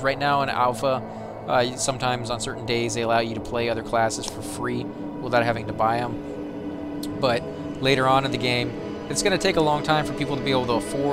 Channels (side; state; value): both; identical; correlation 1.00